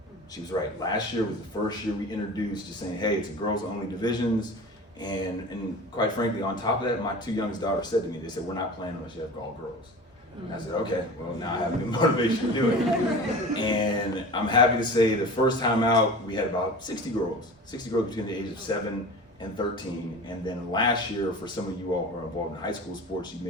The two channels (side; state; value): both; normal; correlation 0.36